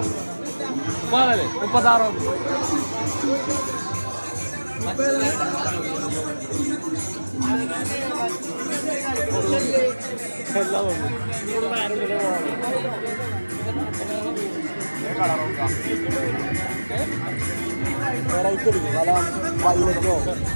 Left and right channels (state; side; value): inverted; both; correlation -1.00